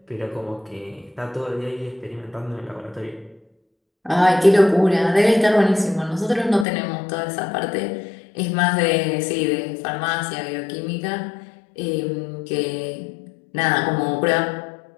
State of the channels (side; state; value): right; drops out; at 6.7 s